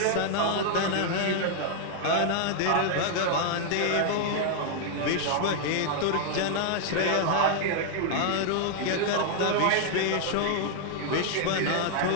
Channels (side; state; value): both; different; correlation 0.00